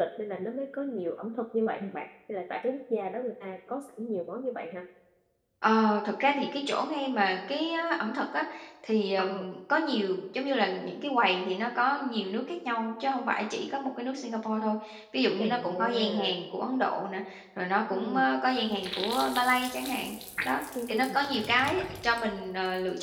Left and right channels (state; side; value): identical; both; correlation 1.00